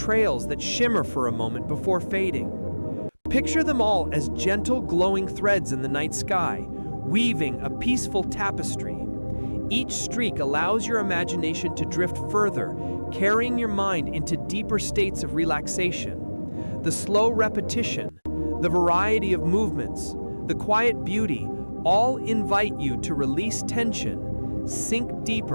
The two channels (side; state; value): both; inverted; correlation -1.00